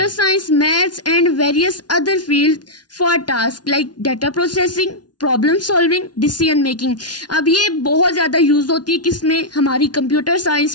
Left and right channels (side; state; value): right; late; 0.69 ms